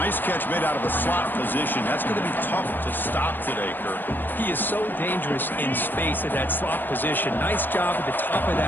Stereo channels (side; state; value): right; late; 0.092 ms